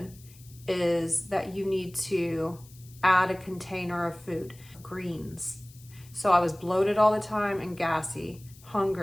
is that you need to add a container of food, greens. So I was bloated all the time and gassy,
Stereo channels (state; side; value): noise; left; hiss, 24 dB below the sound